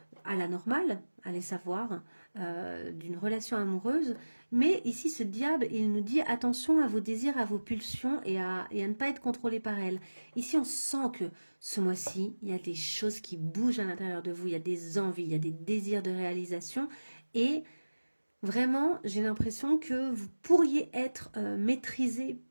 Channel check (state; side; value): inverted; both; correlation -1.00